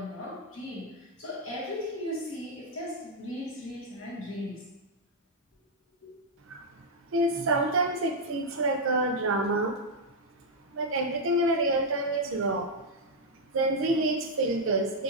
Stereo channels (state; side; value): normal; both; correlation -0.02